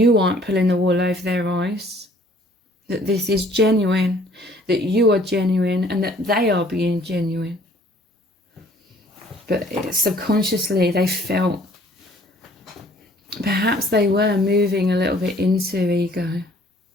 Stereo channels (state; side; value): normal; both; correlation 0.57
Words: aren't pulling the wool over their eyes. That this is genuine, that you are genuine, and that they are being genuine. But subconsciously they felt, perhaps they were moving a little bit into ego.